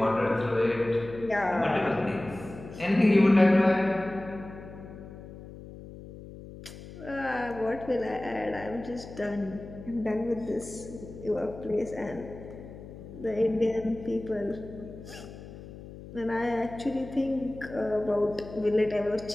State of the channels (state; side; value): noise; left; hum, 15 dB below the sound